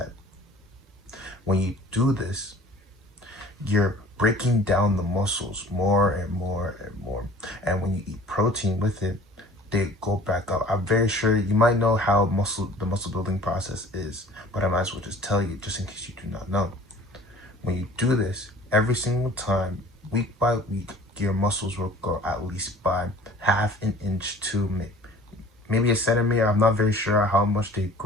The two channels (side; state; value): both; normal; correlation 0.47